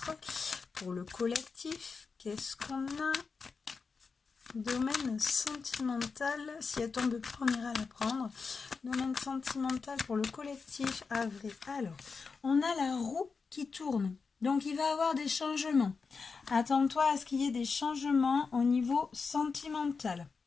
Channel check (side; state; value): right; quieter; 4.9 dB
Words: Pour le collectif, qu'est-ce qu'on a? Domaine sentimental, si elle tombe pas, on ira la prendre. Domaine sentimental pour le collectif, avril. Alors, on a la roue qui tourne. Donc, il va y avoir des changements. Attends-toi à ce qu'il y ait des changements au niveau sentimental.